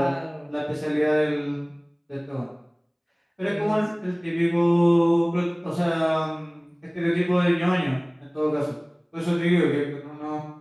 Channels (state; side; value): identical; both; correlation 1.00